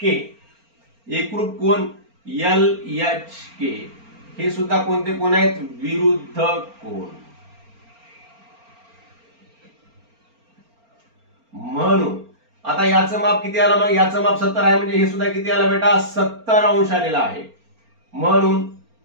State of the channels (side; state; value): left; late; 4.4 ms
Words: के एकरूप कोण एल एच के. हे सुद्धा कोणते कोण आहेत, विरुद्ध कोण. म्हणून आता याचं माप किती आलं, मग याचं माप 70 आहे म्हणजे हे सुद्धा किती आलं बेटा, 70 अंश आलेला आहे. म्हणून